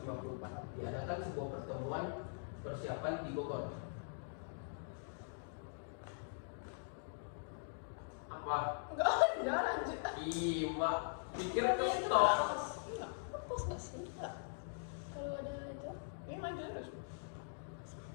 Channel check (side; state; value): right; silent; digital silence